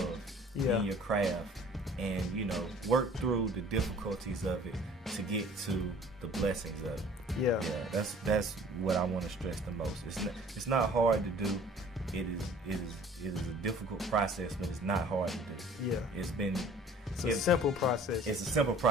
in your craft, and work through the difficulties of it to get to the blessings of it. Yeah, that's what I want to stress the most. It's not hard to do. It is a difficult process, but it's not hard to do. Yeah, it's a simple process. It's a simple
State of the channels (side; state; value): both; normal; correlation 0.50